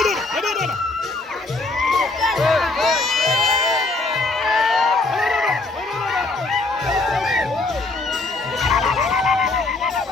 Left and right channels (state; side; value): quieter; right; 3.3 dB